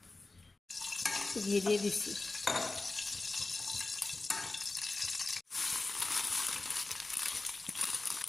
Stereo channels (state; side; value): quieter; right; 3.3 dB